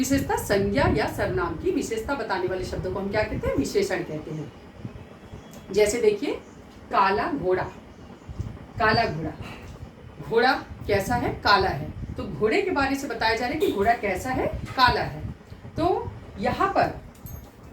संज्ञा या सर्वनाम की विशेषता बताने वाले शब्दों को हम क्या कहते हैं? विशेषण कहते हैं। जैसे देखिए, काला घोड़ा। काला घोड़ा, घोड़ा कैसा है? काला है। तो घोड़े के बारे से बताया जा रहा है कि घोड़ा कैसा है? काला है। तो यहाँ पर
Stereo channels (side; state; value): both; identical; correlation 1.00